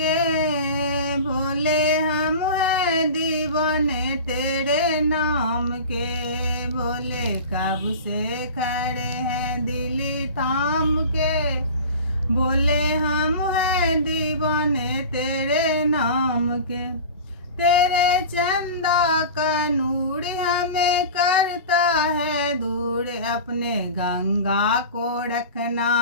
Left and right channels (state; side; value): inverted; both; correlation -0.34